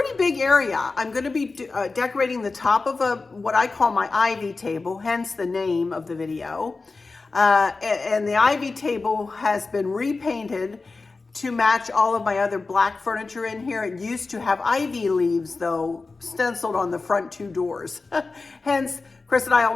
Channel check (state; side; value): quieter; right; 3.9 dB